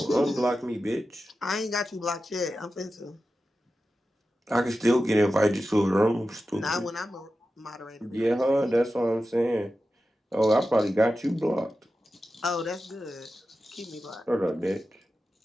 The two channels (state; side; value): normal; both; correlation 0.92